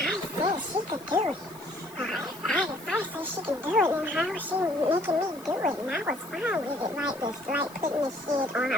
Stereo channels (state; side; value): noise; left; hiss, 21 dB below the sound